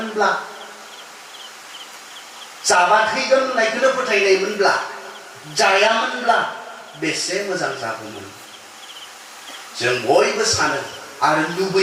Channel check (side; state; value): both; identical; correlation 1.00